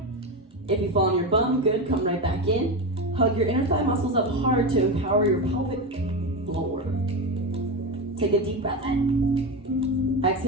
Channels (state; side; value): normal; both; correlation 0.17